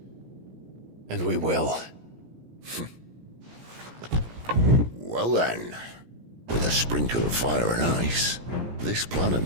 And we will. Well then, with a sprinkle of fire and ice, this plan of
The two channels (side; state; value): left; late; 17 ms